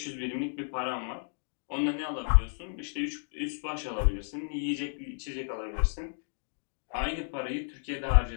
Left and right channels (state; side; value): silent; right; digital silence